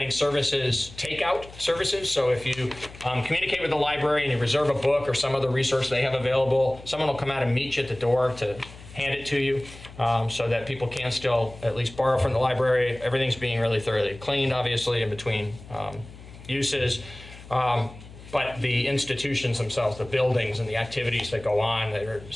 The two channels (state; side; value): noise; left; hum, 18 dB below the sound